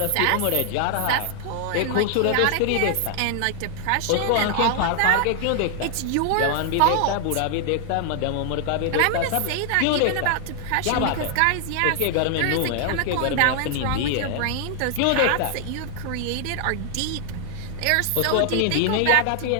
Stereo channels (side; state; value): both; different; correlation 0.00